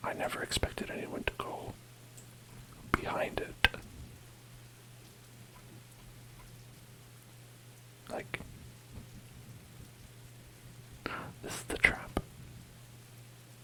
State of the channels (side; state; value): both; identical; correlation 1.00